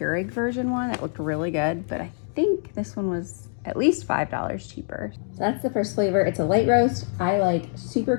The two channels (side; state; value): right; silent; 60 dB below the other